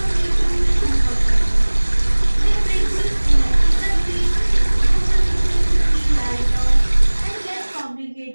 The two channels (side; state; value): both; inverted; correlation -1.00